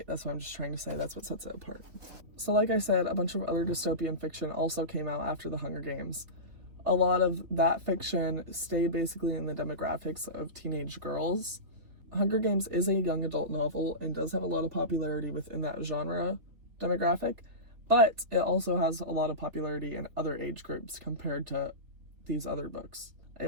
That's what I'm just trying to say. That's what sets it apart. So like I said, a bunch of other dystopian fiction also came out after the Hunger Games. A lot of that fiction stayed basically in the demographics of teenage girls. Hunger Games is a young adult novel and does have a lot of popularity within that genre demographic, but it also has a lot of popularity in other age groups compared to these other books.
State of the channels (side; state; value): left; late; 3.8 ms